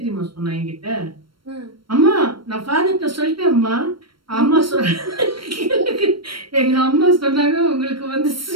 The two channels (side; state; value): left; late; 0.73 ms